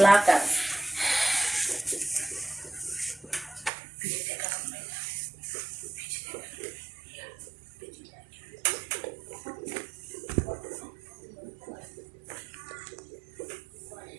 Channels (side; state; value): left; drops out; at 3.7 s